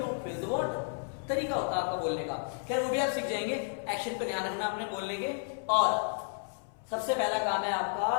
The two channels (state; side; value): silent; right; 56 dB below the other